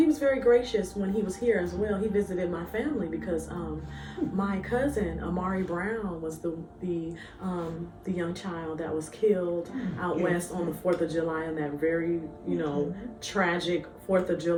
was very gracious when he was here as well. He visited my family because my cousin Amari Brown was the young child that was killed out west on the 4th of July on that very tragic 4th of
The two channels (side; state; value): both; identical; correlation 1.00